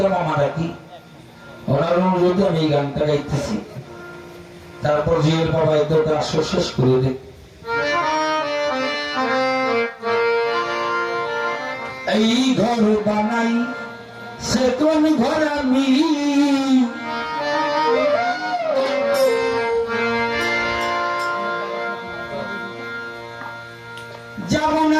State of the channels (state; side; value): identical; both; correlation 1.00